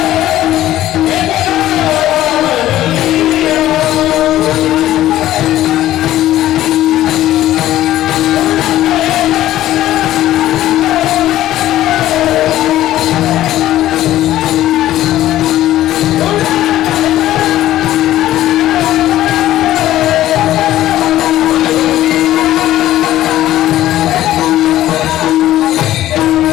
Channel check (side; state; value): right; quieter; 14.0 dB